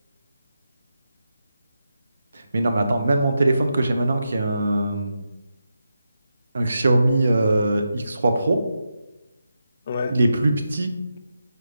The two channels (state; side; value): inverted; both; correlation -0.87